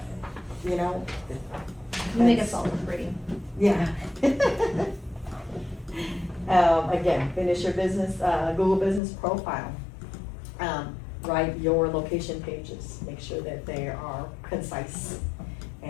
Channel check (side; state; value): right; drops out; at 9.0 s